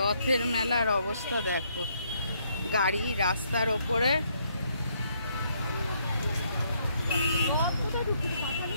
মেলার অবস্থা দেখো, গাড়ি রাস্তার ওপরে,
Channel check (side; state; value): both; inverted; correlation -0.71